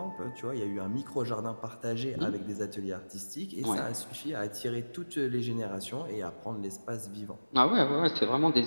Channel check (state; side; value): inverted; both; correlation -1.00